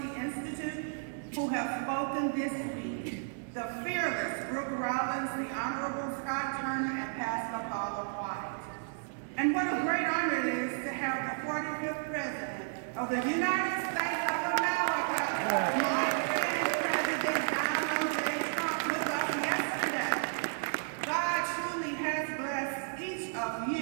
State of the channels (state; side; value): silent; left; digital silence